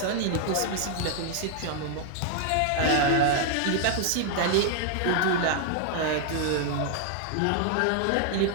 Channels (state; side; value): different; both; correlation 0.00